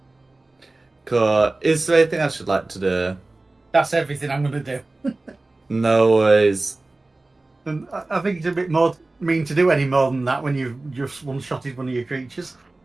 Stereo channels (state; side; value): quieter; left; 3.0 dB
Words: Cool. Is there anything else you'd like to do? That's everything I'm going to do. No worries. And I think it's a bit more mean to do any more than that when you've just one-shotted one of your creatures.